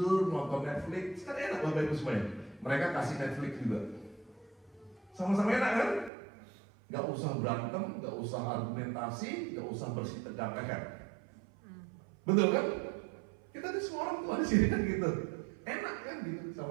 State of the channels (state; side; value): drops out; left; at 6.1 s